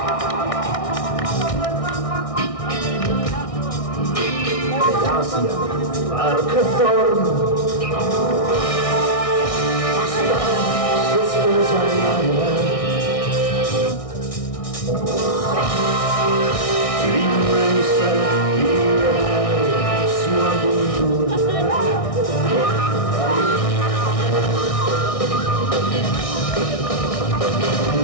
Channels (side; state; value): right; late; 1.6 ms